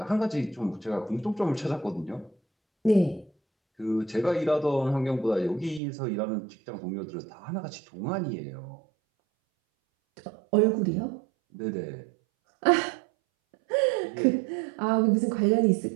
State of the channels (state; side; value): drops out; left; at 5.8 s